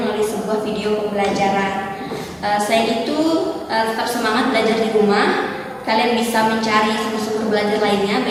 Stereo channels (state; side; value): identical; both; correlation 1.00